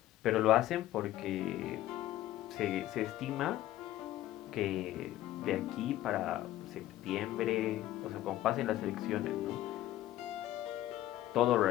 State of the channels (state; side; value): quieter; right; 14.2 dB